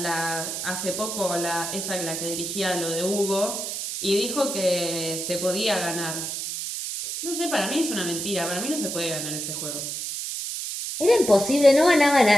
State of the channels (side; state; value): right; noise; hiss, 4 dB below the sound